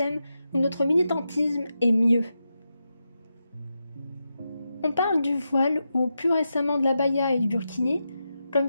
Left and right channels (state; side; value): inverted; both; correlation -0.88